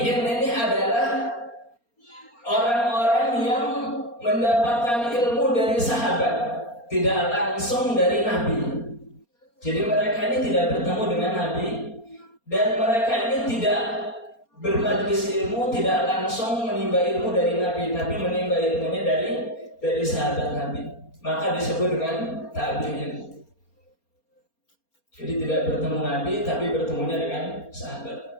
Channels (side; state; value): right; late; 4.3 ms